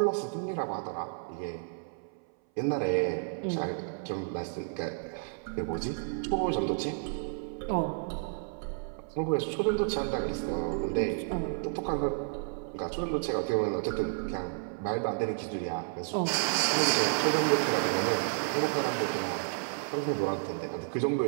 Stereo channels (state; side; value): silent; left; 57 dB below the other